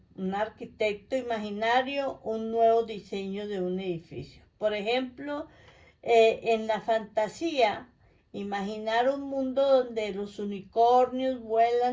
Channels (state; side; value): identical; both; correlation 1.00